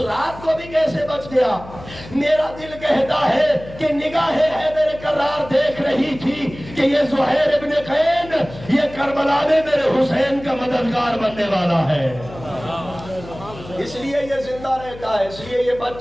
کو بھی کیسے بچ گیا؟ میرا دل کہتا ہے کہ نگاہ حیدر کرار دیکھ رہی تھی کہ یہ زہیر ابن قین یہ کربلا میں میرے حسین کا مددگار بننے والا ہے، اس لیے یہ زندہ رہتا ہے، اس لیے یہ بچ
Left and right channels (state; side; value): noise; left; hum, 16 dB below the sound